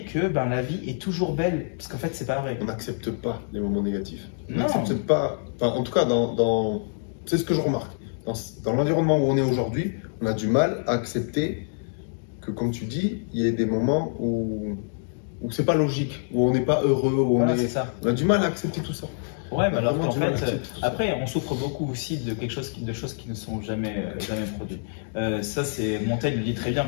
que la vie est toujours belle, parce qu'en fait, c'est pas vrai. On n'accepte pas les moments négatifs. On Non. n'accepte pas... Enfin, en tout cas, c'est ce que je remarque. Dans l'environnement où on est aujourd'hui, on a du mal à accepter que, comme tu dis, il y ait des moments où c'est pas logique, où on n'est pas heureux, où Voilà, c'est ça. on a du mal à accepter tout ça. Ouais, mais alors Vraiment qu'en du mal à fait, accepter tout ça. après, on souffre beaucoup aussi de de choses qui ne sont jamais produites. Ça, c'est Montaigne le dit très bien.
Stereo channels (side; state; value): right; silent; digital silence